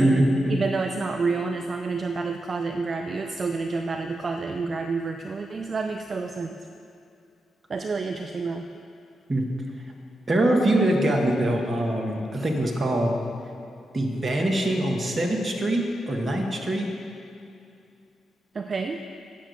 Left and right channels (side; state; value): both; normal; correlation 0.88